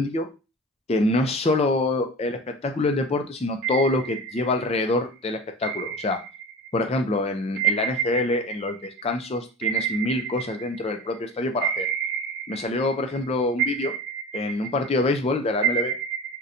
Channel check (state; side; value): normal; both; correlation 0.34